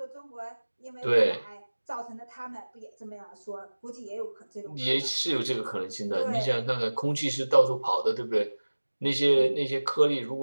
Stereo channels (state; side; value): inverted; both; correlation -1.00